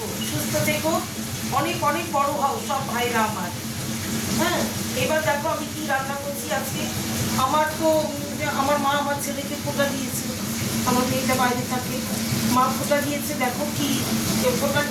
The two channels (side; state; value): both; identical; correlation 1.00